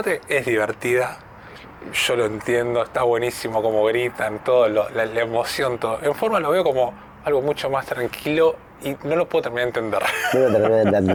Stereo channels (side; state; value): both; identical; correlation 1.00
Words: es divertida, yo lo entiendo, está buenísimo como gritan, todo, la emoción, todo. En forma lo veo como algo mucho más tranquilo y no lo puedo terminar de entender. No lo terminé de